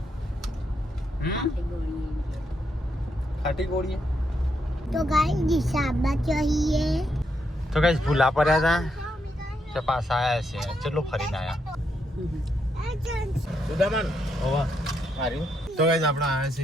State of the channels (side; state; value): both; normal; correlation 0.79